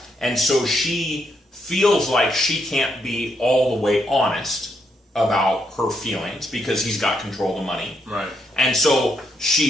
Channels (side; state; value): both; normal; correlation 0.78